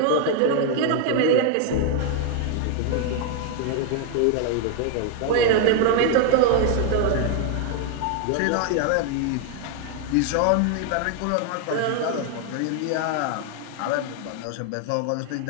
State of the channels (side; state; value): both; different; correlation 0.00